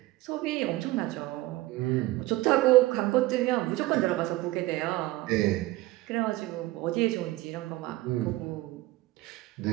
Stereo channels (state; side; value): quieter; left; 18.4 dB